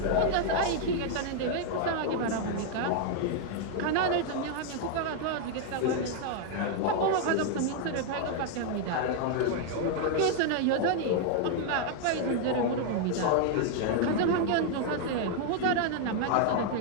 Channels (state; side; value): different; both; correlation 0.00